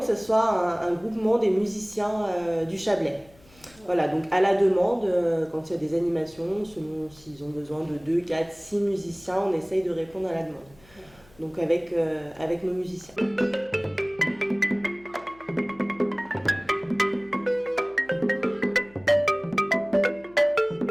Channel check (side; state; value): left; noise; hum, 27 dB below the sound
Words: ce soit un groupement des musiciens du Chablais. Voilà, donc à la demande, quand il y a des animations, selon s'ils ont besoin de 2, 4, 6 musiciens, on essaye de répondre à la demande. Donc avec nos musiciens.